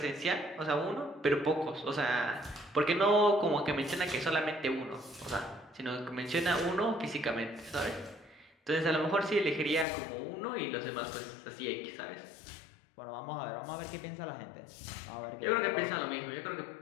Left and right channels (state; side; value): drops out; right; at 9.9 s